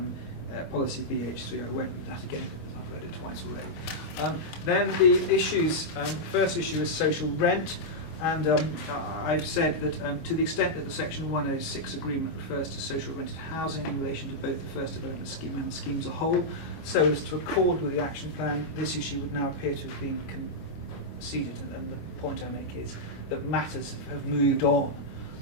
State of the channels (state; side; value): late; right; 25 ms